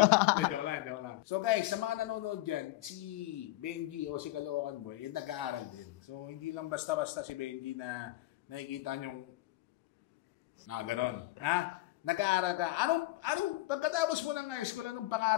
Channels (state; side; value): quieter; right; 17.7 dB